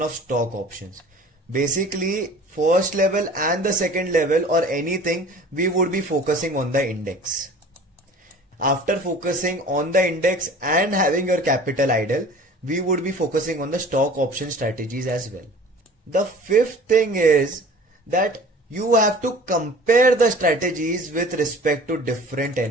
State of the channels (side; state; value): both; normal; correlation 0.44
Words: of stock options. Basically, first level and the second level or anything, we would be focusing on the index. After focusing on the index and having your capital idle, we would be focusing on the stock option strategies as well. The fifth thing is that you have to compare the strategies with respect to different